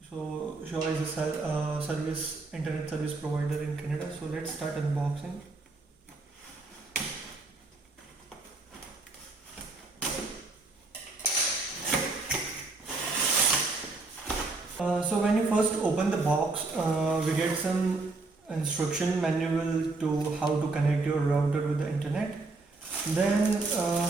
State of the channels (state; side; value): quieter; left; 3.6 dB